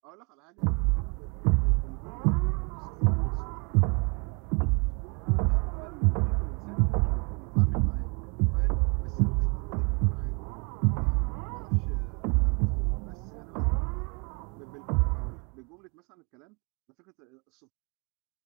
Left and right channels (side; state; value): left; quieter; 32.1 dB